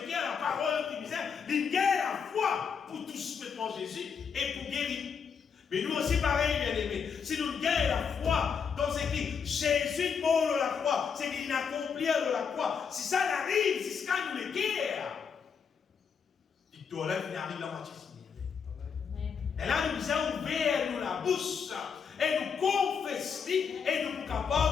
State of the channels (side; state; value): right; quieter; 6.5 dB